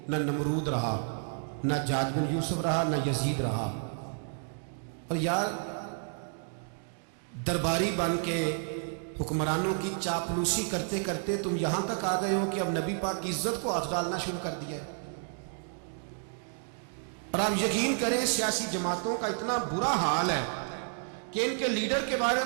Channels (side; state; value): left; silent; 57 dB below the other